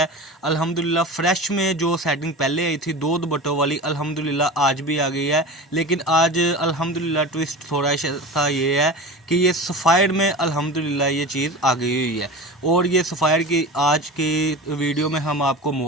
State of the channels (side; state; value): both; normal; correlation 0.31